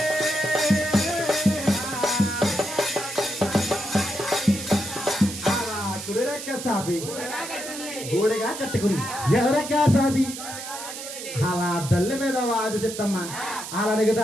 ఎవరెక్క సాపి గోడగా కట్టుకుని ఎవరెక్క సాపి అలా తల్లి మీద వాది చెత్తమ్మ అలా అడుగుతా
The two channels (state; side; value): noise; right; hiss, 9 dB below the sound